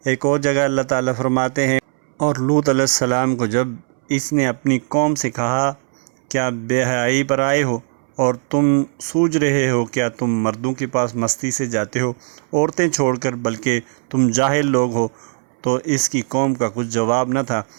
ایک اور جگہ اللہ تعالیٰ فرماتے ہیں، اور لوط علیہ السلام کو جب اس نے اپنی قوم سے کہا، کیا بے حیائی پر آئے ہو اور تم سوچ رہے ہو؟ کیا تم مردوں کے پاس مستی سے جاتے ہو عورتیں چھوڑ کر؟ بلکہ تم جاہل لوگ ہو، تو اس کی قوم کا کچھ جواب نہ تھا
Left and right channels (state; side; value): silent; left; 66 dB below the other